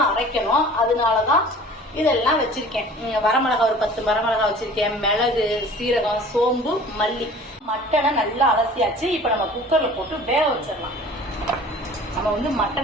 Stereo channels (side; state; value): both; normal; correlation 0.45